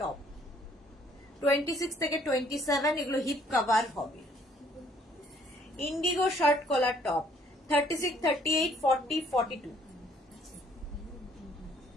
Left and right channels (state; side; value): normal; both; correlation 0.63